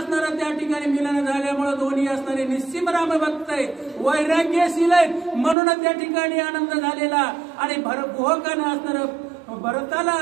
त्या ठिकाणी मिलन झाल्यामुळे दोन्ही असणारे निश्चिम रामभक्त आहेत, वैराग्यशील आहेत म्हणून त्या ठिकाणी आनंद झालेला आणि गुहकानं असणारं भरताला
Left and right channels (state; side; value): drops out; left; at 5.6 s